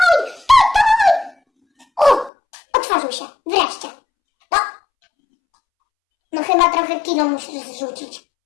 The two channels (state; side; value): drops out; right; at 2.3 s